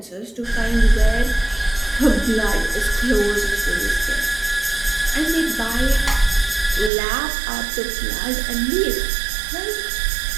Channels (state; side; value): drops out; left; at 6.9 s